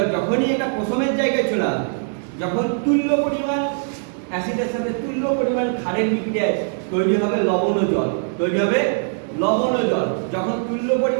যখনই এটা প্রসমের জায়গায় চলে আসবে, যখন তুল্য পরিমাণ অ্যাসিডের সাথে তুল্য পরিমাণ ক্ষারের বিক্রিয়ায় তৈরি হবে লবণ জল, যখন তুল্য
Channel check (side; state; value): left; silent; digital silence